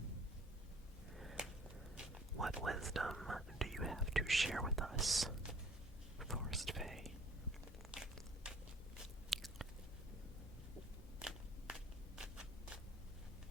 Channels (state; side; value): normal; both; correlation 0.53